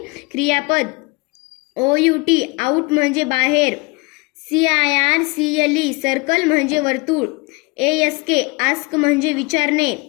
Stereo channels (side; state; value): right; quieter; 27.3 dB